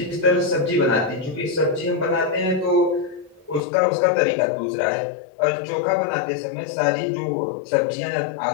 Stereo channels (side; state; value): right; drops out; at 3.6 s